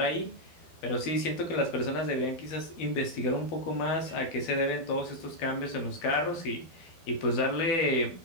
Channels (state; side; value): late; right; 12 ms